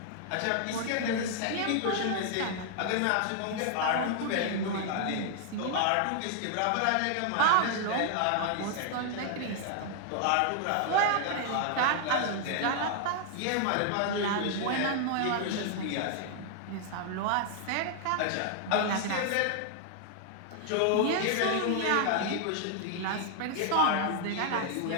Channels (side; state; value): both; different; correlation 0.00